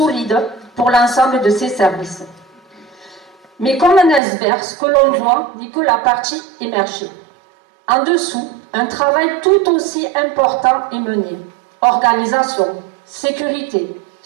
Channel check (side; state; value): left; drops out; at 4.2 s